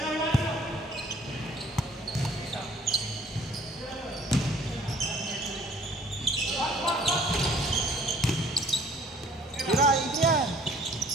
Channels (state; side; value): normal; both; correlation 0.55